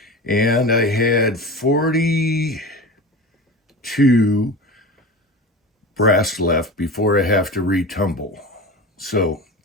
and I had 42 brass left before I have to retumble. So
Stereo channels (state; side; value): normal; both; correlation 0.30